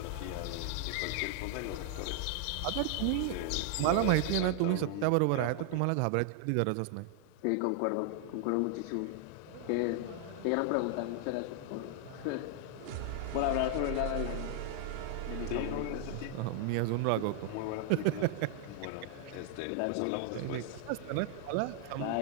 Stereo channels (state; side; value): different; both; correlation 0.00